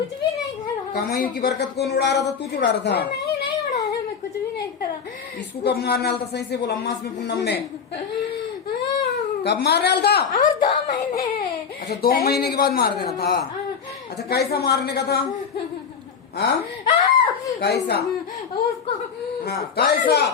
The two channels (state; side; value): quieter; right; 6.5 dB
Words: भी नहीं करा। कमाई की बरकत कौन उड़ा रहा था? तू उड़ा रहा था? नहीं नहीं उड़ाया, मैं कुछ भी नहीं करा। इसको कब मारने वाला था? सही से बोल, अम्मास में पूनम में कब मारने वाला था? और 2 महीने। अच्छा, 2 महीने के बाद मार देना था। अच्छा, कैसा मारने का था? हाँ, कैसा? उसको हाँ, कैसा?